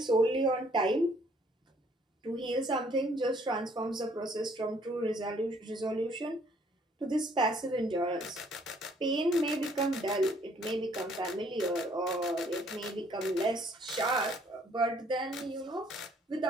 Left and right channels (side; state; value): both; normal; correlation 0.63